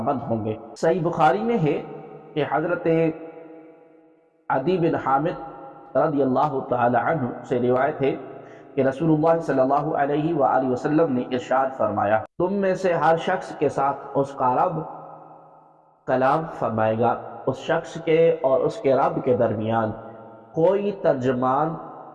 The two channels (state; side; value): identical; both; correlation 1.00